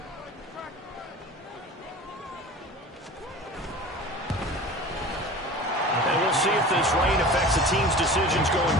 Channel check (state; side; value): normal; both; correlation 0.38